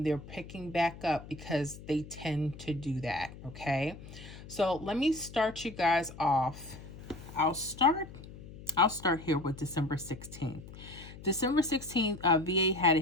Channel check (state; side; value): noise; left; hum, 15 dB below the sound